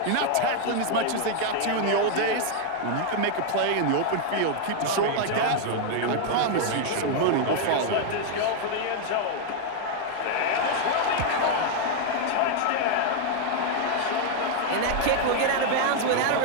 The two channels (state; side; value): different; both; correlation 0.00